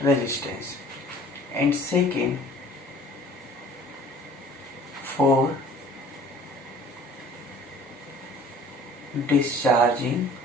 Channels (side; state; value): both; normal; correlation 0.49